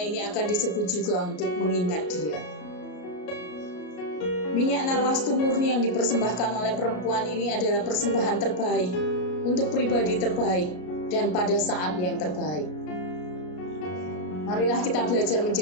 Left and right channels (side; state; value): right; late; 33 ms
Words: ini akan disebut juga untuk mengingat dia. Minyak narwastu murni yang dipersembahkan oleh perempuan ini adalah persembahan terbaik untuk pribadi terbaik dan pada saat yang terbaik. Marilah kita belajar